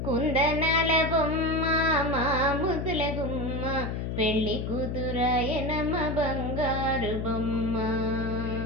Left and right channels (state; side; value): noise; left; hum, 3 dB below the sound